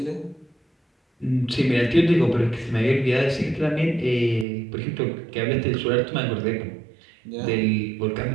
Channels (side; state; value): left; drops out; at 4.5 s